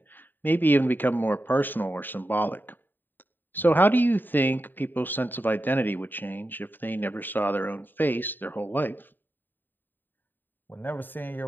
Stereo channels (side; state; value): right; late; 0.092 ms